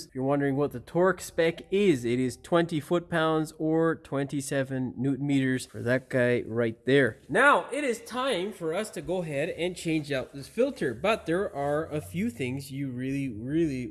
If you're wondering what the torque spec is, it is 20 foot-pounds or 27 newton meters for that guy right there. Now, it is time for us to go ahead and change out this filter, but there are a few things you really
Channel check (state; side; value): identical; both; correlation 1.00